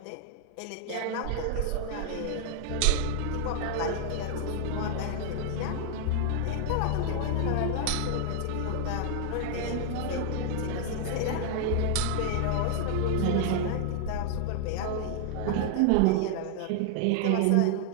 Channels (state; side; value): different; both; correlation 0.00